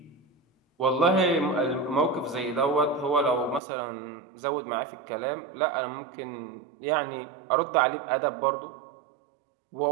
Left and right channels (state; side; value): drops out; left; at 3.6 s